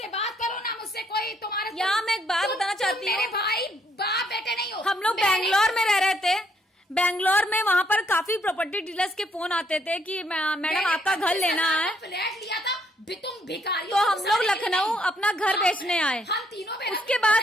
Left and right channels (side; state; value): both; normal; correlation 0.70